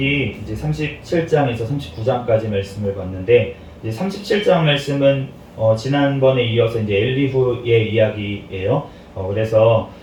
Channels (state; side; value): identical; both; correlation 1.00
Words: 이제 37장에서 39장까지 말씀을 봤는데 이제 37장 말씀은 지난번에 이어서 이제 엘리후의 이야기예요. 그래서